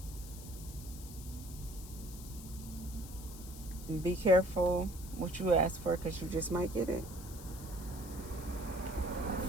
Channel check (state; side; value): noise; left; hiss, 15 dB below the sound